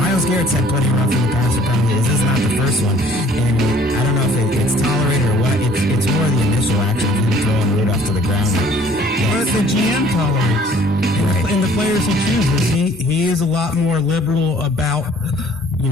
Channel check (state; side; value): normal; both; correlation 0.55